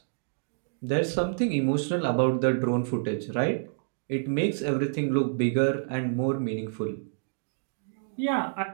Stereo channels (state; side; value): silent; left; digital silence